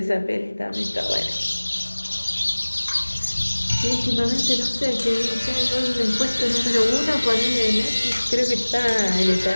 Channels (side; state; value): both; inverted; correlation -1.00